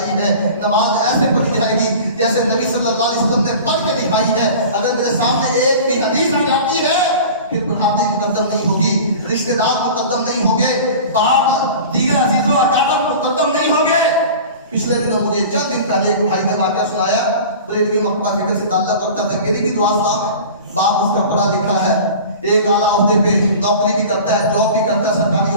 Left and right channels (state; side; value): inverted; both; correlation -0.38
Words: ہے. نماز ایسے پڑھی جائے گی جیسے نبی صلی اللہ علیہ وسلم نے پڑھ کے دکھائی ہے. اگر میرے سامنے ایک بھی حدیث آ جاتی ہے, پھر برادری مقدم نہیں ہوگی, رشتہ دار مقدم نہیں ہوں گے, باپ دیگر عزیز و اقارب مقدم نہیں ہوں گے. پچھلے دنوں مجھے چند دن پہلے ایک بھائی نے واقعہ سنایا, بریلوی مقبہ فکر سے تعلق رکھتا تھا. میری بھی دعا سلام ہے, باپ اس کا پڑھا لکھا ہے, ایک اعلیٰ عہدے پہ نوکری بھی کرتا ہے، جاب بھی کرتا ہے سرکاری